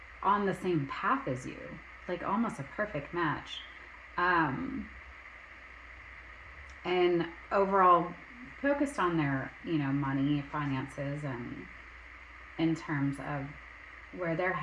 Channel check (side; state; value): both; identical; correlation 1.00